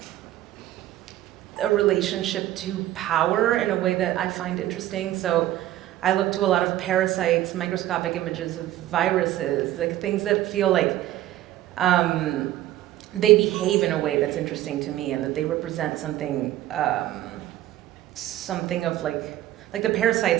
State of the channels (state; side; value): quieter; left; 14.1 dB